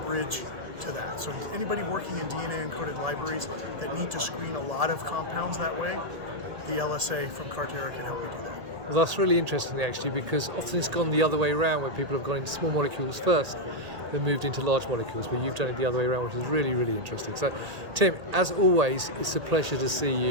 to that. So anybody working in DNA encoded libraries that need to screen a lot of compounds that way, the LSA from Carterra can help you do that. Well, that's really interesting actually, because often it's gone the other way around, where people have gone into small molecules first, then moved into large molecules, but you've done it the other way around, which is really, really interesting. So Tim, as always, it's a pleasure to see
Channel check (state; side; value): late; left; 1.7 ms